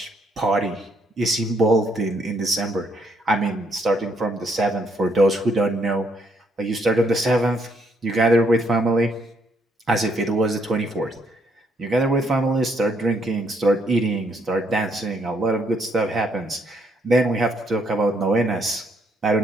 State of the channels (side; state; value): both; normal; correlation 0.72